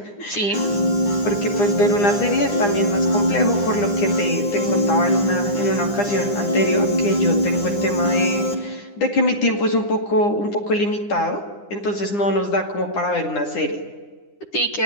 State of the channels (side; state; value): right; late; 9.9 ms